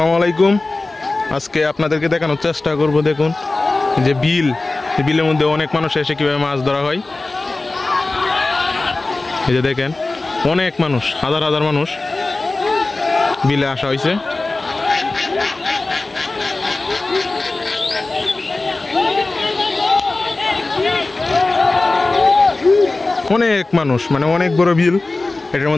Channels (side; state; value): right; quieter; 3.2 dB